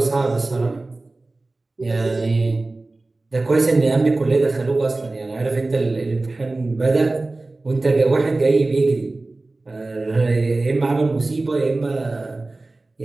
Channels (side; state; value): left; quieter; 3.2 dB